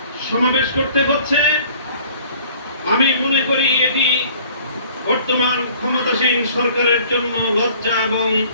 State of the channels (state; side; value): inverted; both; correlation -0.52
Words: সমাবেশ করতে হচ্ছে। আমি মনে করি এটি বর্তমান ক্ষমতাসীন সরকারের জন্য লজ্জা এবং